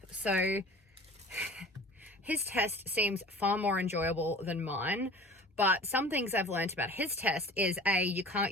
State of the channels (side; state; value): both; normal; correlation 0.42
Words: So his test seems far more enjoyable than mine. But some things I've learned about his test is you